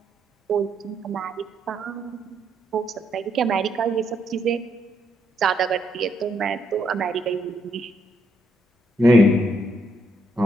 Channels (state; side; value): normal; both; correlation 0.75